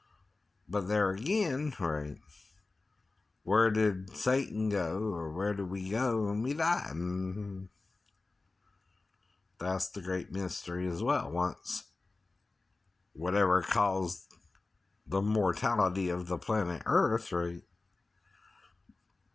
But there again, right? Where did Satan go, or where did we go when we die? That's the great mystery as well. Once whatever caused the mortality of the planet Earth, right?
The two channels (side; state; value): right; quieter; 3.5 dB